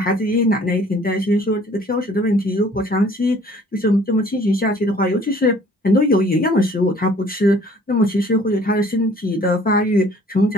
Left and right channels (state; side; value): normal; both; correlation 0.55